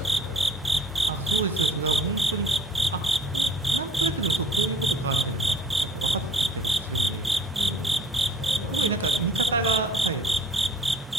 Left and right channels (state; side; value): normal; both; correlation 0.53